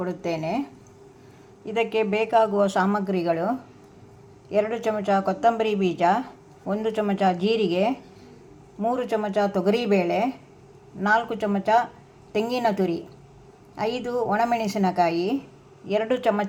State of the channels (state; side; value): identical; both; correlation 1.00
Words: ಇದಕ್ಕೆ ಬೇಕಾಗುವ ಸಾಮಗ್ರಿಗಳು: 2 ಚಮಚ ಕೊತ್ತಂಬರಿ ಬೀಜ, 1 ಚಮಚ ಜೀರಿಗೆ, 3 ಚಮಚ ತೊಗರಿಬೇಳೆ, 4 ಚಮಚ ತೆಂಗಿನ ತುರಿ, 5 ಒಣಮೆಣಸಿನಕಾಯಿ, 2